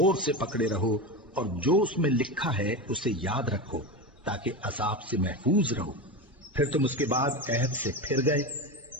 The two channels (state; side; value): normal; both; correlation 0.20